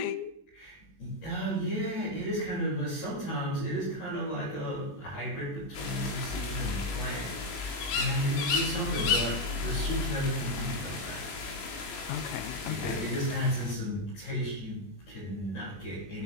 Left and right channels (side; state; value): right; late; 21 ms